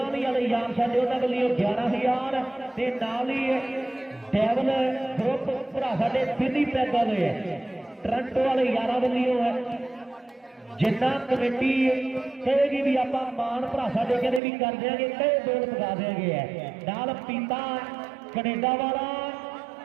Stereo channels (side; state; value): left; drops out; at 14.4 s